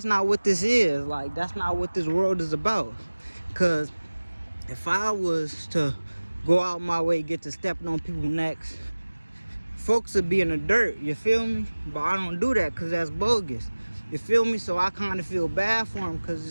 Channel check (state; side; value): inverted; both; correlation -1.00